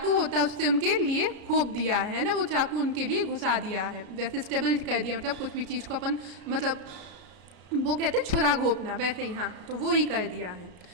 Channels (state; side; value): late; left; 33 ms